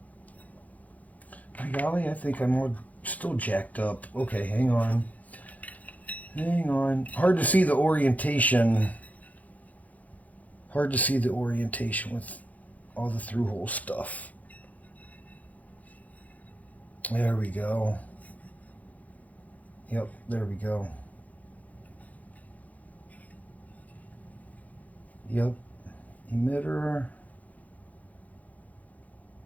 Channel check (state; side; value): late; right; 0.075 ms